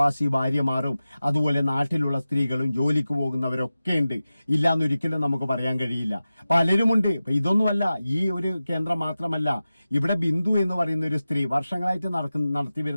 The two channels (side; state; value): both; inverted; correlation -0.95